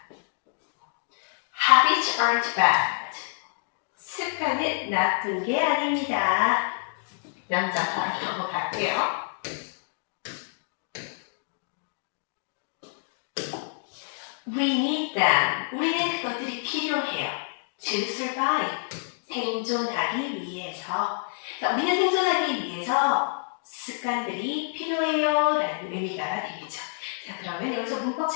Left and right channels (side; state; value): right; silent; digital silence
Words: Habits aren't bad. 습관은 나쁜 게 아닙니다. 명사상 영어 갈게요. We need them. 우리는 그것들이 필요해요. To survive. 생존하기 위해서. 우리는 생존하기 위해서 습관들이 필요해요 라는 의미가 되겠죠. 자, 그러면 여기서 문법